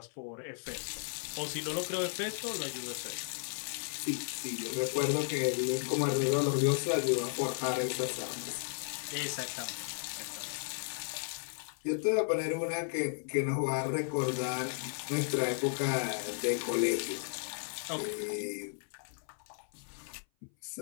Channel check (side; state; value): right; silent; 55 dB below the other